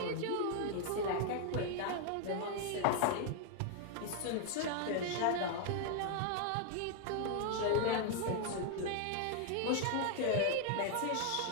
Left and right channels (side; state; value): both; different; correlation 0.00